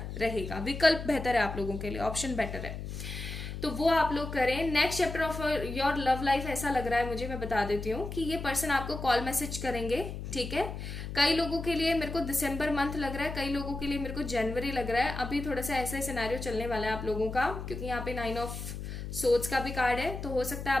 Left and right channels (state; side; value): noise; left; hum, 7 dB below the sound